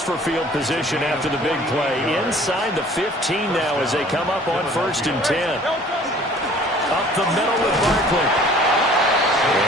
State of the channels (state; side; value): normal; both; correlation 0.51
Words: for field position after the big play? Inside the 15 now as they come up on 1st and 10. Up the middle with Barkley.